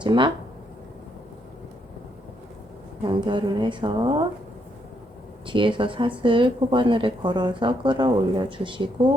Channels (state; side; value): normal; both; correlation 0.75